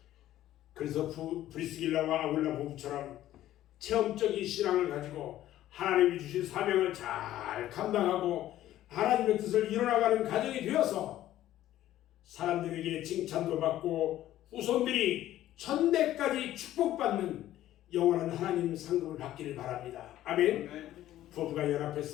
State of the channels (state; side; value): quieter; right; 13.5 dB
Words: 그래서 브리스길라와 아굴라 부부처럼 체험적인 신앙을 가지고 하나님이 주신 사명을 잘 감당하고 하나님의 뜻을 이뤄나가는 가정이 되어서 사람들에게 칭찬도 받고 후손들이 천대까지 축복받는 영원한 하나님 상급을 받기를 바랍니다. 아멘. 부부가